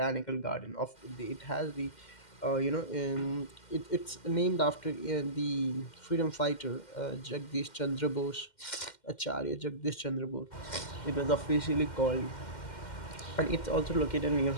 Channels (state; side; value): late; right; 2.1 ms